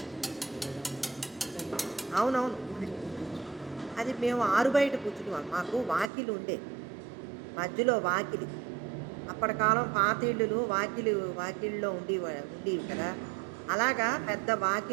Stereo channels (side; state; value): left; drops out; at 6.1 s